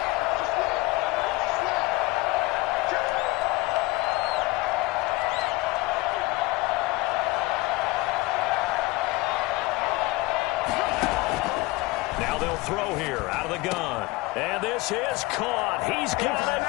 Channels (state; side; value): quieter; right; 21.2 dB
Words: Now they'll throw here out of the gun. And this is caught. He's got a